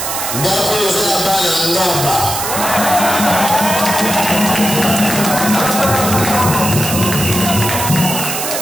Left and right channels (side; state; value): right; noise; hiss, 3 dB below the sound